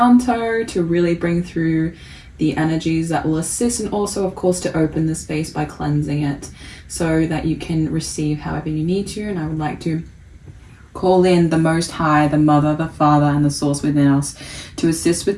to really bring through the energies that will assist, and also, of course, to open the space by cleansing it so that you can receive however you need to. And I would like to call in the Most High, the Mother, the Father, and the Source within us to assist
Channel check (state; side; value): identical; both; correlation 1.00